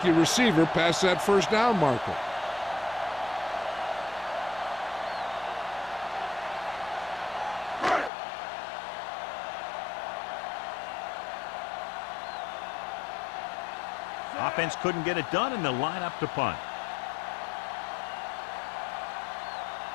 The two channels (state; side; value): drops out; right; at 8.1 s